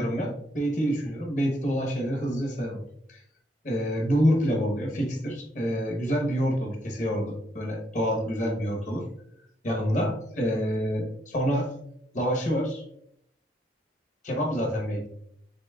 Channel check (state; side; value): normal; both; correlation 0.73